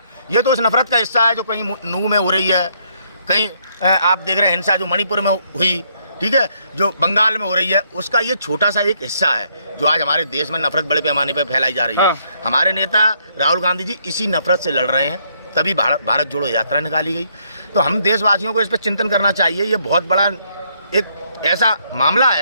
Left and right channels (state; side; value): inverted; both; correlation -0.71